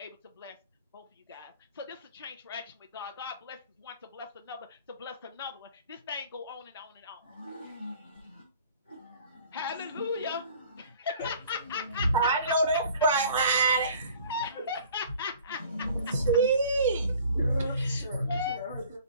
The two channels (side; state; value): both; inverted; correlation -0.50